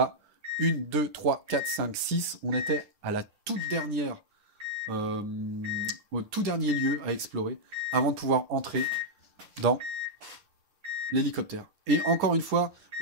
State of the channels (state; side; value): late; left; 9.9 ms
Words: 1, 2, 3, 4, 5, 6. On était à la toute dernière, au tout dernier lieu à explorer, avant de pouvoir entrer dans l'hélicoptère. Et encore une fois